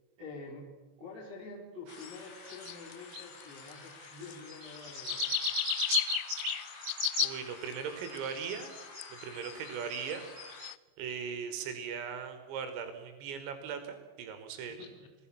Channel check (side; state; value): left; late; 22 ms